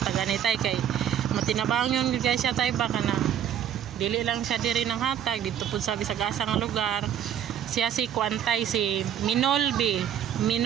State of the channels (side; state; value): left; quieter; 9.9 dB